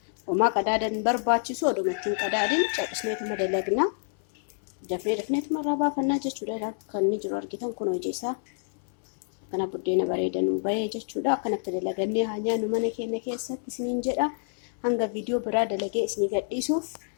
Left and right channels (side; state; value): right; silent; 60 dB below the other